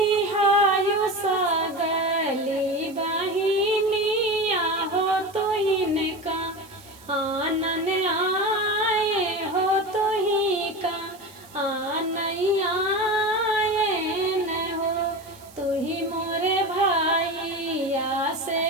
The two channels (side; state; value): right; noise; hiss, 23 dB below the sound